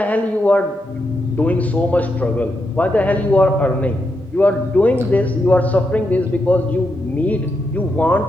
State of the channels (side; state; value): both; normal; correlation 0.83